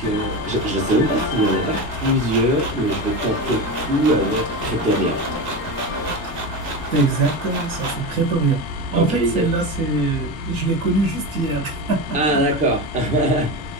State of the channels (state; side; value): normal; both; correlation 0.22